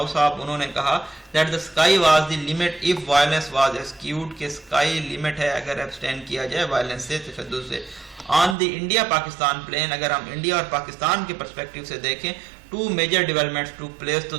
صاحب, انہوں نے کہا that the sky was the limit of violence was eschewed, کہ اسکائی لمٹ ہے اگر ایبسٹین کیا جائے وائلنس سے, تشدد سے. On the India Pakistan plane, اگر ہم انڈیا اور پاکستان کے پرسپیکٹو سے دیکھیں, two major developments took place, تو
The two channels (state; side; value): drops out; left; at 8.6 s